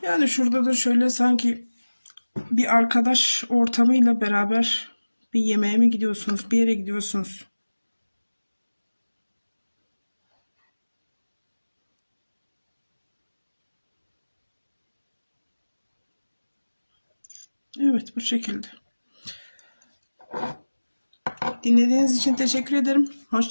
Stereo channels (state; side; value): inverted; both; correlation -1.00